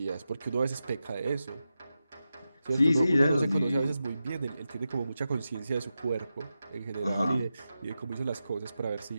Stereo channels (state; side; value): inverted; both; correlation -0.91